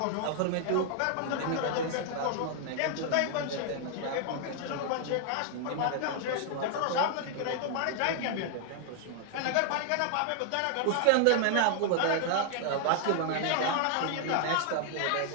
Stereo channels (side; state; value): both; different; correlation 0.00